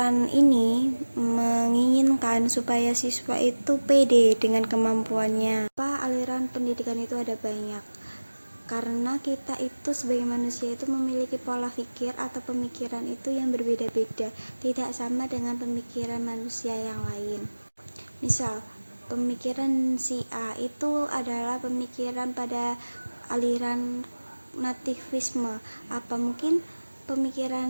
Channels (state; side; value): inverted; both; correlation -1.00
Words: ini menginginkan supaya siswa itu pede dengan kemampuannya. Aliran pendidikan itu ada banyak, karena kita itu sebagai manusia itu memiliki pola pikir atau pemikiran itu yang berbeda-beda, tidak sama dengan pemikiran manusia yang lain. Misal, pemikiran si A itu adalah pemikiran pada aliran nativisme. Apa mungkin